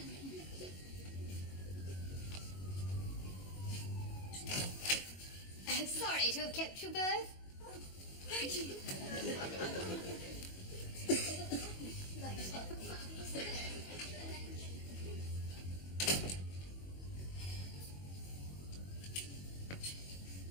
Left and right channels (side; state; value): right; late; 22 ms